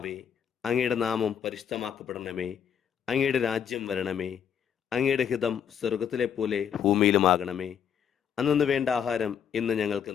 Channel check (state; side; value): quieter; right; 8.3 dB